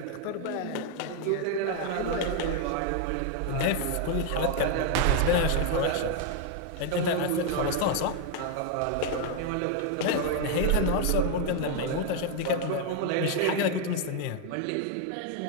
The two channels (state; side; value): different; both; correlation 0.01